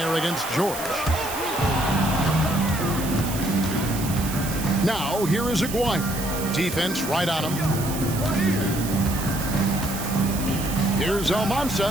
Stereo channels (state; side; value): noise; right; hiss, 9 dB below the sound